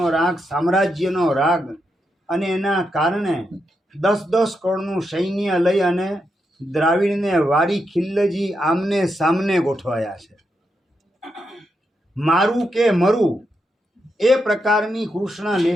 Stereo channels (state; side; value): normal; both; correlation 0.84